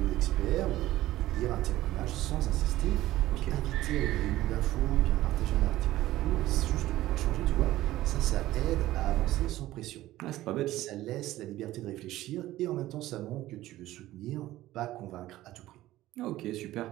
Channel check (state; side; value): quieter; left; 15.6 dB